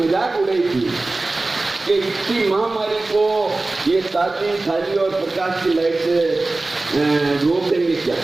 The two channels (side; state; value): left; quieter; 3.2 dB